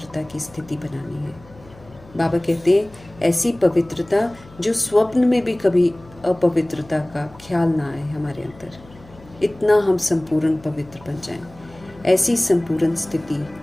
की स्थिति बनानी है। बाबा कहते हैं ऐसी पवित्रता जो स्वप्न में भी कभी अपवित्रता का ख्याल ना आए हमारे अंदर, इतना हम संपूर्ण पवित्र बन जाएं। ऐसी संपूर्ण स्थिति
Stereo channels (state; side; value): noise; left; hum, 23 dB below the sound